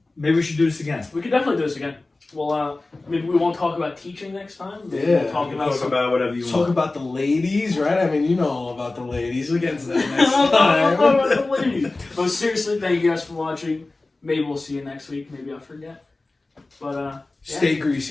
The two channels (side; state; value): right; quieter; 3.2 dB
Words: Maybe we should do this again. we could definitely do this again. Well, maybe we won't talk about teaching next time. Maybe Yeah. we'll talk We can about talk some. about whatever you Talk want. about the ladies, right? I mean, you know all about the ladies. We'll get into that We'll next talk time. about the ladies. But seriously, thank you guys for watching. Maybe we'll see you next week. Maybe I'll forget. But Stay